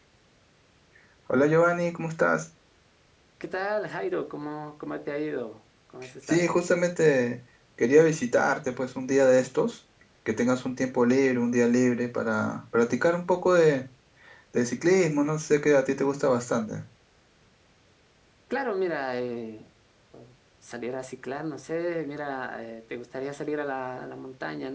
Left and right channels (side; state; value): both; identical; correlation 1.00